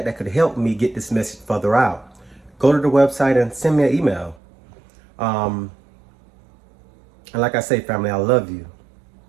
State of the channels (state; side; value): drops out; left; at 4.4 s